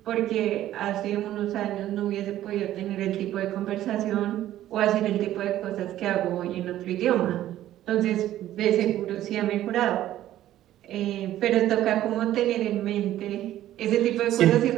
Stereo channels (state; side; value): quieter; left; 13.2 dB